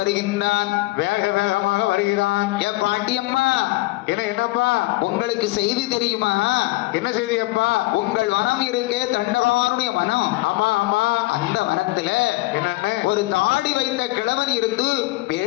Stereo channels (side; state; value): right; quieter; 20.8 dB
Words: வேக வேகமாக வருகிறான். என் பாட்டியம்மா, என்னப்பா உங்களுக்கு செய்தி தெரியுமா? என்ன செய்தி அப்பா? உங்கள் வனம் இருக்கே, தண்டகாருடைய வனம். ஆமா ஆமா. அந்த வனத்துல என்னன்னு ஒரு தாடி வைத்த கிழவன் இருந்து